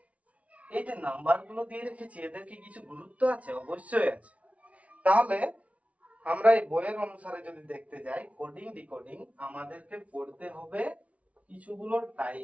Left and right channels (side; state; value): left; late; 0.066 ms